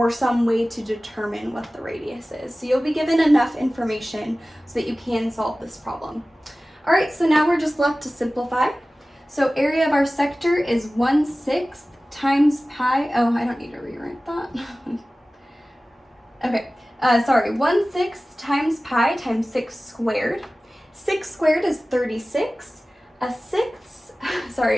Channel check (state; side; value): normal; both; correlation 0.97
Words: some way to determine what the radius is. So you'll be given enough information so that you can solve this problem. All right, so now we're just left to simplify. So area of our sector is 1/6 times pi. Oh, I don't need to rewrite that. Okay, sorry, 1/6 times pi times 6 squared. 6 squared is 36. A sixth,